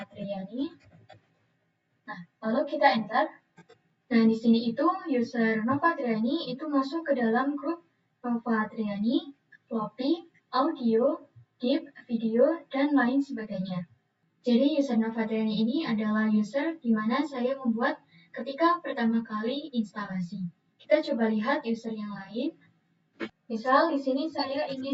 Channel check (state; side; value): identical; both; correlation 1.00